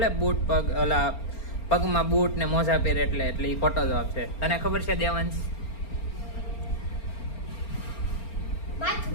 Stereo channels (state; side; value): late; right; 4.4 ms